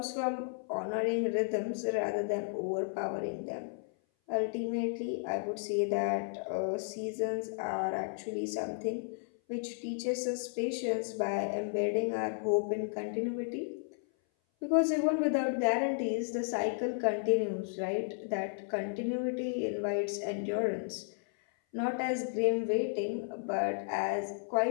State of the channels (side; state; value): right; silent; 55 dB below the other